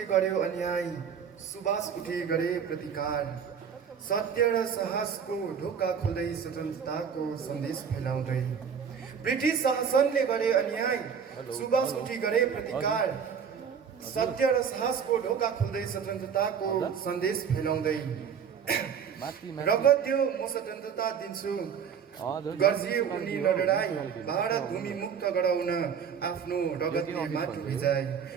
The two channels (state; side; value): quieter; left; 7.1 dB